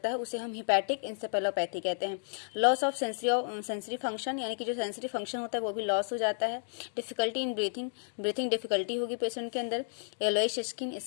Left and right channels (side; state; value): right; silent; digital silence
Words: है, उसे हम हिपैटिक इंसेफेलोपैथी कहते हैं। लॉस ऑफ सेंसरी फंक्शन, यानी कि जो सेंसरी फंक्शन होता है वो भी लॉस हो जाता है। डिफिकल्टी इन ब्रीथिंग डिफिकल्टी होगी पेशेंट के अंदर। येलोइश